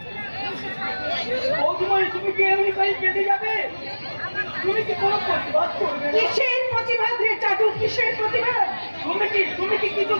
বৌদিমণি তুমি কি এমনি করে কেটে যাবে? তুমি কি কোনো প্রতিবাদ করবে না? কিসের প্রতিবাদ রে চাটু, কিসের প্রতিবাদ? তুমি কি কিছু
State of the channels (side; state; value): both; inverted; correlation -1.00